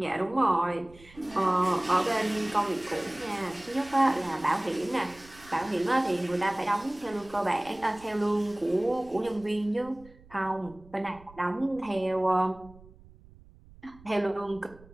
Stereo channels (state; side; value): noise; right; rumble, 23 dB below the sound